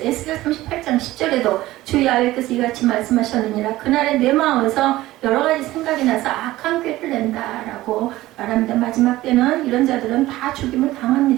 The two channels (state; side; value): quieter; left; 16.8 dB